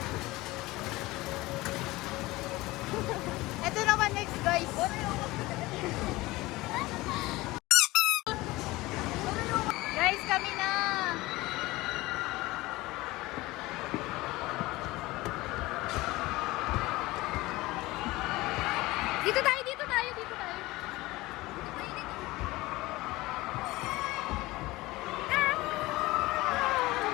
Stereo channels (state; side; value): quieter; right; 19.9 dB